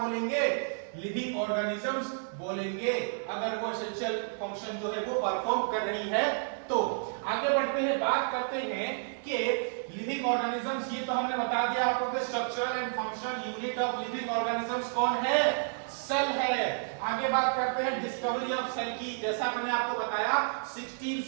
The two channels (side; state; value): left; silent; digital silence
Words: लिविंग ऑर्गेनिजम्स बोलेंगे। अगर वो एसेंशियल फंक्शन जो है वो परफॉर्म कर रही है तो। आगे बढ़ते हैं, बात करते हैं कि लिविंग ऑर्गेनिजम्स, ये तो हमने बता दिया आपको कि structural and functional unit of living organisms कौन है, सेल है। आगे बात करते हैं डिस्कवरी ऑफ सेल की। जैसा मैंने आपको बताया